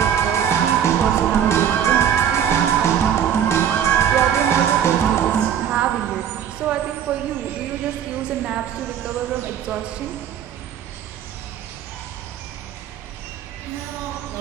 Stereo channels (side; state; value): left; quieter; 9.0 dB